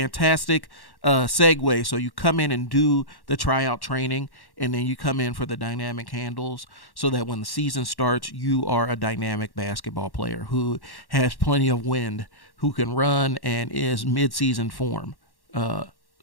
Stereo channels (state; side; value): late; right; 1.1 ms